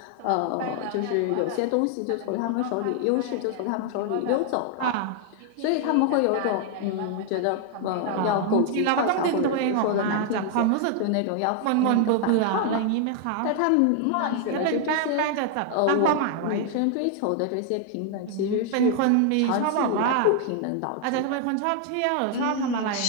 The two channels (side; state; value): both; different; correlation 0.00